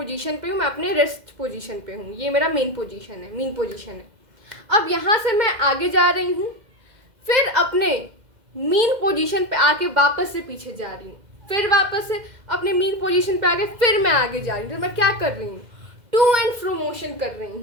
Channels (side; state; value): left; late; 2.1 ms